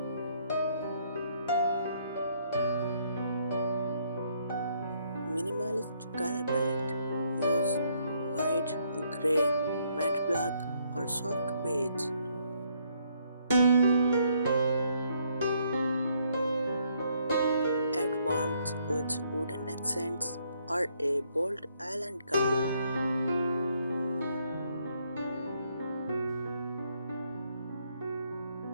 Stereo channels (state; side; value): inverted; both; correlation -0.70